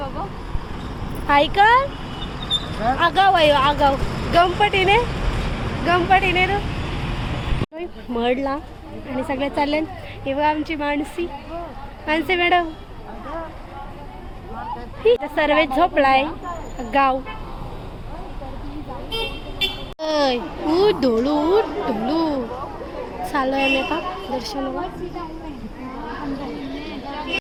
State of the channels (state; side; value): identical; both; correlation 1.00